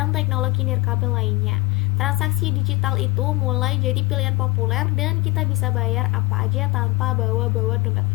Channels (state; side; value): quieter; right; 22.0 dB